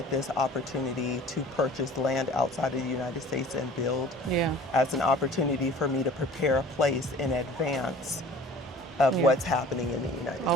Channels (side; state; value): both; normal; correlation 0.46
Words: this opportunity to purchase land outside of the United States and build as an opportunity for me to prepare a place in advance of what's happening in the